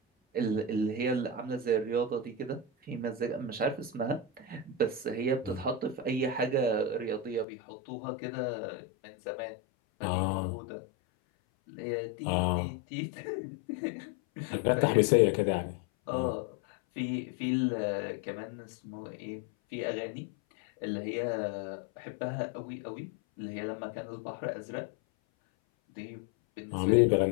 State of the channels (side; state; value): right; drops out; at 7.5 s